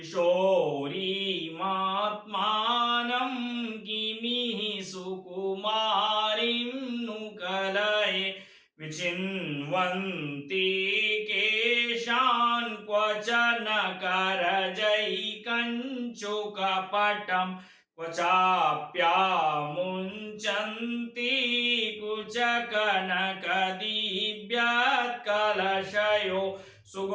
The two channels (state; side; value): identical; both; correlation 1.00